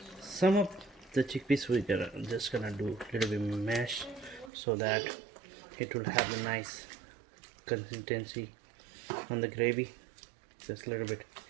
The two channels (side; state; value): left; drops out; at 4.5 s